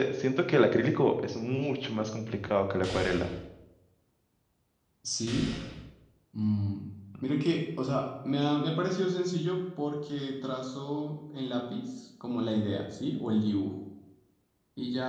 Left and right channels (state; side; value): identical; both; correlation 1.00